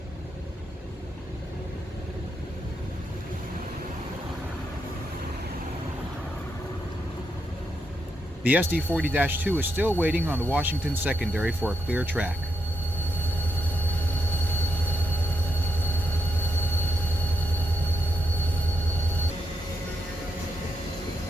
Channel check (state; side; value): normal; both; correlation 0.82